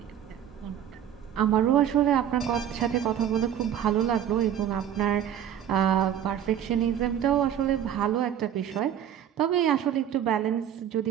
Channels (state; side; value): quieter; left; 9.9 dB